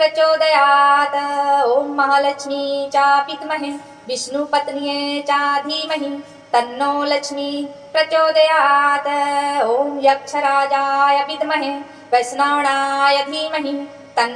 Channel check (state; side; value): identical; both; correlation 1.00